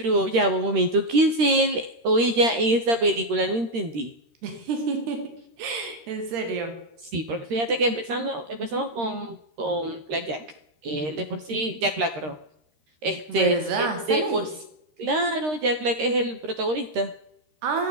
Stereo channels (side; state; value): left; late; 13 ms